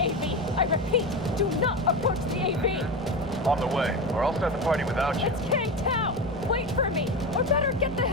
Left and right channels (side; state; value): both; normal; correlation 0.21